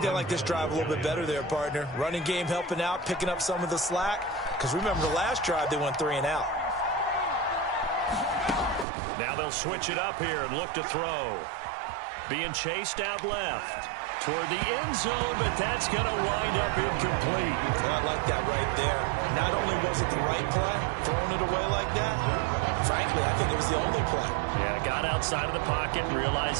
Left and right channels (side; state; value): left; drops out; at 8.8 s